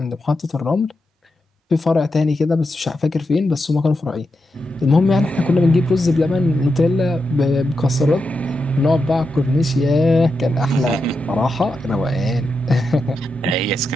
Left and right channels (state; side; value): normal; both; correlation 0.87